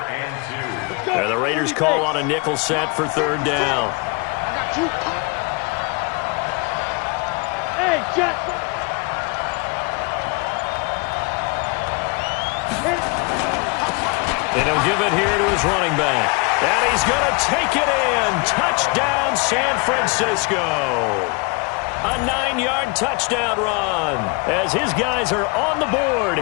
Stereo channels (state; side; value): quieter; right; 29.9 dB